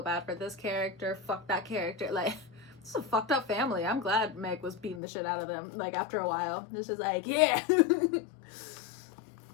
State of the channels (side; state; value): right; drops out; at 5.0 s